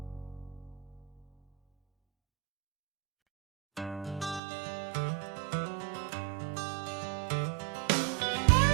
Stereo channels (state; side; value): drops out; left; at 4.4 s